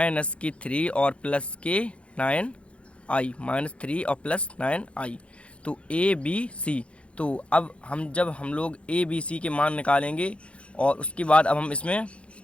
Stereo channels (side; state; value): right; late; 0.060 ms